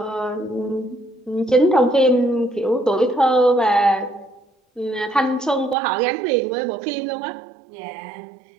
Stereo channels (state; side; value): drops out; left; at 5.8 s